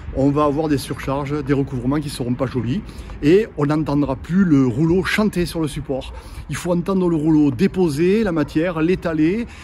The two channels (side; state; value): both; identical; correlation 1.00